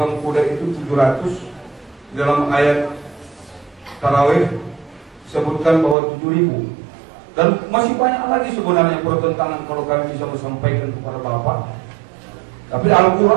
kuda itu 700. Dalam ayat Tarawih disebutkan bahwa 7.000. Dan masih banyak lagi sebenarnya pertentangan kalau kami bisa menyampaikan kepada Bapak. Tapi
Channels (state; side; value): drops out; left; at 6.0 s